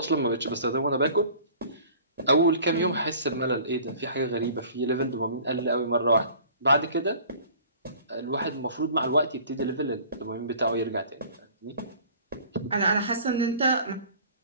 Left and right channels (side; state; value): both; inverted; correlation -0.48